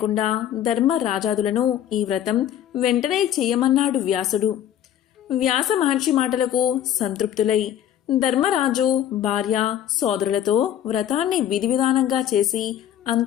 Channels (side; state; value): right; quieter; 10.6 dB